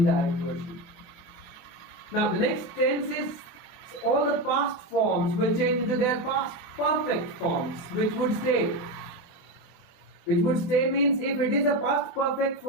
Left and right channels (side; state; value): right; late; 24 ms